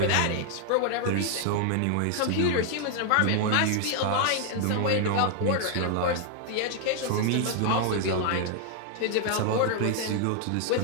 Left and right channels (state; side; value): different; both; correlation 0.00